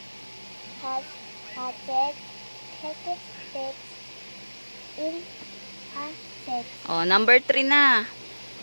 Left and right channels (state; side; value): inverted; both; correlation -1.00